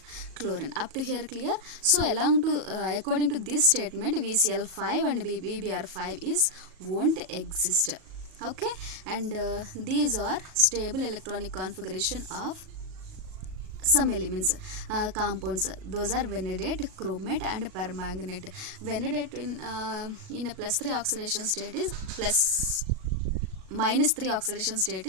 chlorine. Up to here clear? So along to according to this statement, VCl5 and VBr5 is won't exist. Okay, and these are stable electronic configuration of some elements, compounds. Those are vanadate, chromate and permanganate. Vanadate in a +3 oxidation state is -3 oxidation state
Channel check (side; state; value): left; late; 37 ms